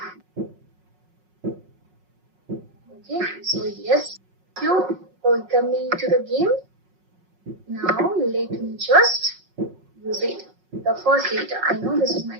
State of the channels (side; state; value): left; late; 5.5 ms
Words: Okay, so yes, you welcome to the game. Now let me just use it. The first letter, I know this is